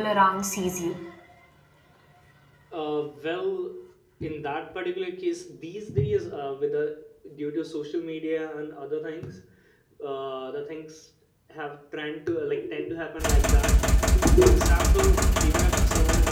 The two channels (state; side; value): identical; both; correlation 1.00